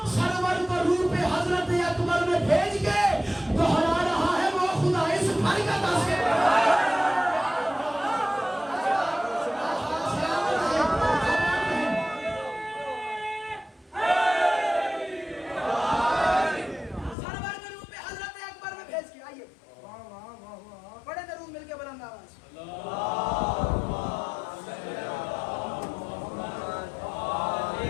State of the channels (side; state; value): right; drops out; at 17.2 s